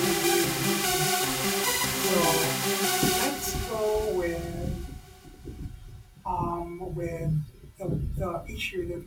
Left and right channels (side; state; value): both; identical; correlation 1.00